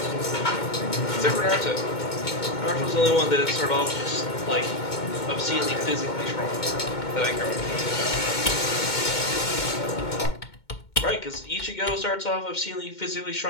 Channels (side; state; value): right; late; 2.1 ms